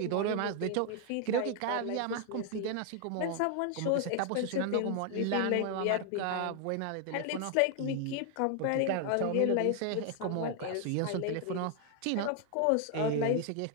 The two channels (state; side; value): different; both; correlation 0.00